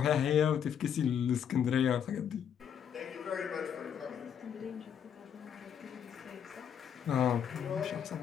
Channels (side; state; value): right; quieter; 8.4 dB